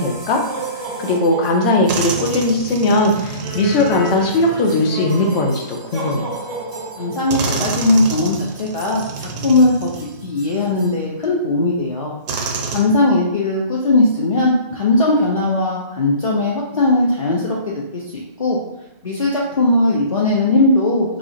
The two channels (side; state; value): both; inverted; correlation -0.46